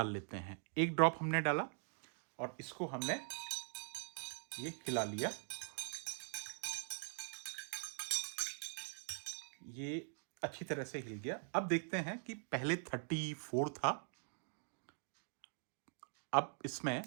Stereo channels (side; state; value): left; silent; digital silence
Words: लेते हैं। 1 ड्रॉप हमने डाला और इसको हमने ये खिला लिया। ये अच्छी तरह से हिल गया। अब देखते हैं कि पहले 34 था, अब इसमें